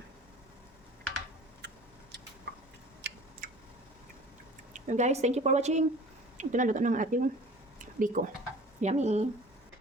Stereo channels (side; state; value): both; normal; correlation 0.45